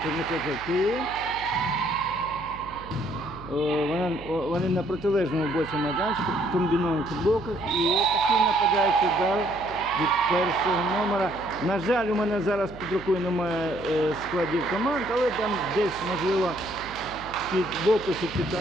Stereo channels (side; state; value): right; noise; hum, 17 dB below the sound